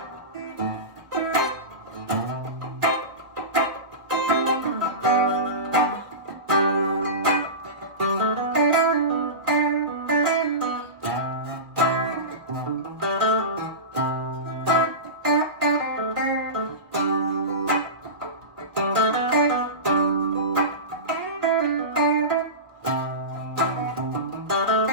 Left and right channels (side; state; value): left; late; 1.6 ms